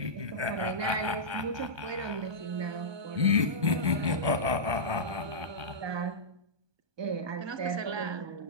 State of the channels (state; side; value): late; left; 1.2 ms